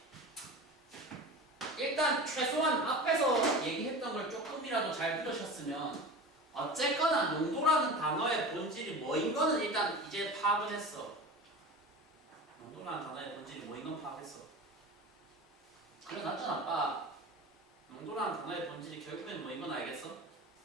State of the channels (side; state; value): both; normal; correlation 0.32